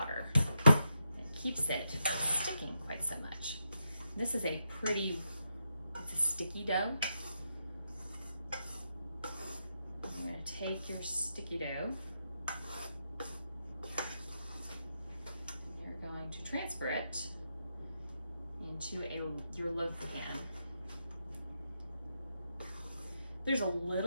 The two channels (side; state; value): both; inverted; correlation -0.84